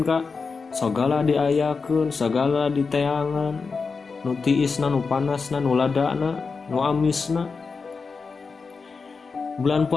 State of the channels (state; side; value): quieter; right; 4.8 dB